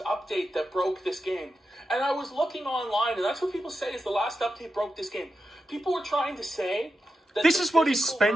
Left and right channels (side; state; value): both; normal; correlation 0.89